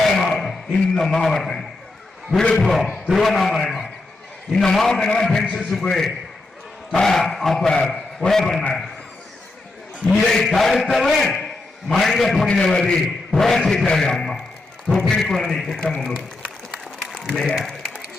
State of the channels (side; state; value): right; quieter; 3.1 dB